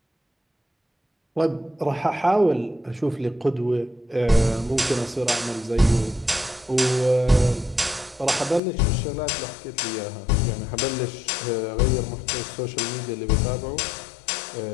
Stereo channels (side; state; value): right; drops out; at 8.6 s